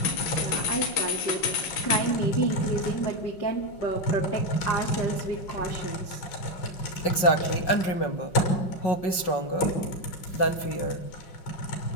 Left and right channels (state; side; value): late; right; 5.4 ms